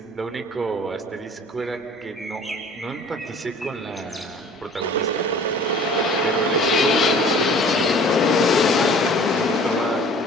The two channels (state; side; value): normal; both; correlation 0.48